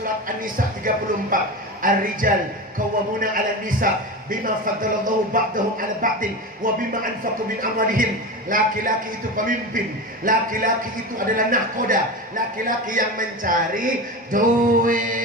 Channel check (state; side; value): normal; both; correlation 0.24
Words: An-Nisa 34. Ar-rijal qawwamuna 'alan nisa bima faddalallahu ba'dahum 'ala ba'din wa bima anfaqu min amwalihim. Laki-laki itu pemimpin, laki-laki itu adalah nahkoda, laki-laki yang mencari